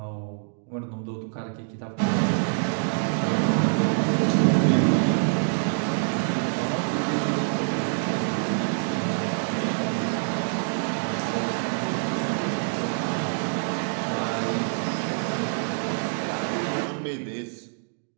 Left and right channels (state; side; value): silent; left; 61 dB below the other